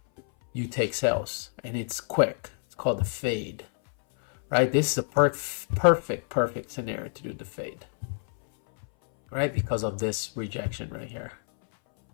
you take sales, and it's quick. It's called the fade, right? This is a perfect scenario to do the fade, right? Because of this rejection right here,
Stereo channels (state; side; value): silent; right; 59 dB below the other